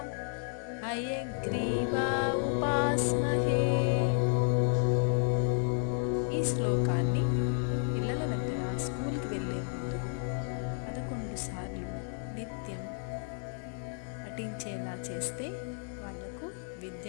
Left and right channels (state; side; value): silent; right; 56 dB below the other